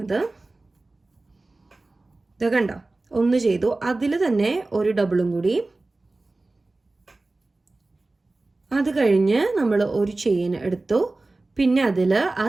ഇത് കണ്ടോ, 1 ചെയ്തു, അതിൽ തന്നെ ഒരു ഡബിളും കൂടി, അത് കഴിഞ്ഞ് നമ്മൾ ഒരു ചെയിൻ എടുത്തു. പിന്നെ അതിൽ ആ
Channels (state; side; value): quieter; left; 3.1 dB